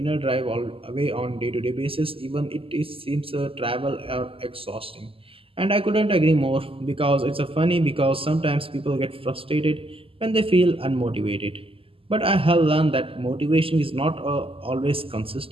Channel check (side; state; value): left; late; 0.26 ms